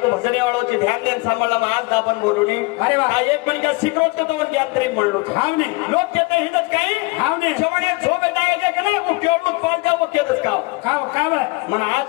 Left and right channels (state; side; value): quieter; right; 25.2 dB